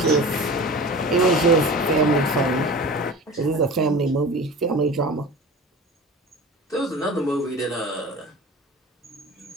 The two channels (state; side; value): normal; both; correlation 0.36